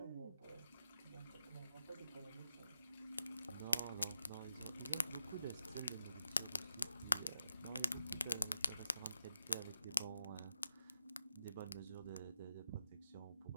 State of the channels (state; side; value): inverted; both; correlation -0.88